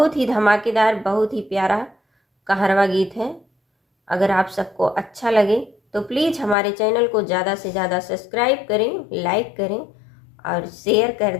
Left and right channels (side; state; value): right; drops out; at 6.6 s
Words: ही धमाकेदार, बहुत ही प्यारा कहरवा गीत है। अगर आप सबको अच्छा लगे तो प्लीज़ हमारे चैनल को ज़्यादा से ज़्यादा सब्सक्राइब करें, लाइक करें और शेयर कर